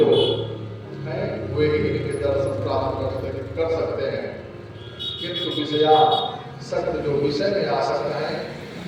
हैं वे ही इनके दर्शन प्राप्त कर सकते हैं, किंतु विषया सत्य जो विषय में आसक्त हैं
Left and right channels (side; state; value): both; identical; correlation 1.00